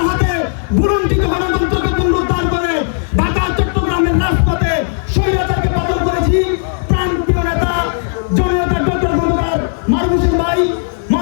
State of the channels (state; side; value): silent; right; digital silence